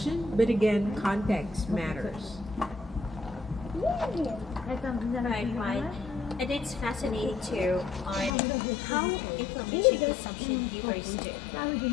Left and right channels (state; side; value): drops out; right; at 8.3 s